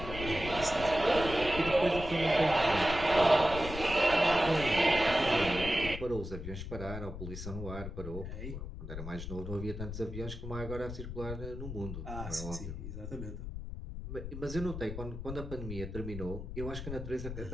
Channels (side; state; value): left; noise; rumble, 8 dB below the sound